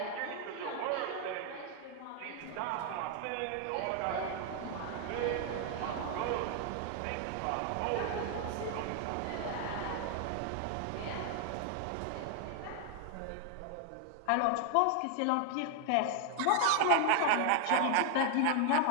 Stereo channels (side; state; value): both; different; correlation 0.00